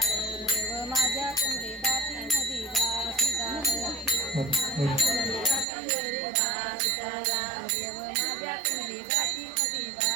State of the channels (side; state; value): left; drops out; at 5.7 s